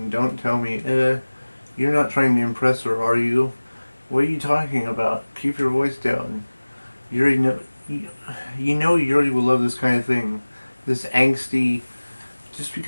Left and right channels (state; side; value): inverted; both; correlation -1.00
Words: Don't tell me, you're not trying to impress her, are you? What are you talking about? Keep your voice down. Yuri, you know Yuri will love this kind of thing. This angsty. Just